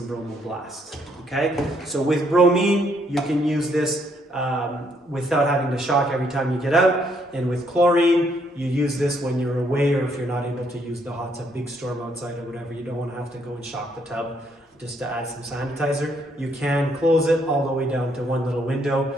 Bromo Blast. Okay, so with bromine, you can use this without having to shock every time you get out. And with chlorine, you use this when you're away or if you're not able to use the hot tub, big storm outside or whatever. You don't want to have to go and shock the tub just to add some sanitizer. You can close it all the way down to one little window,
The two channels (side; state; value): both; normal; correlation 0.71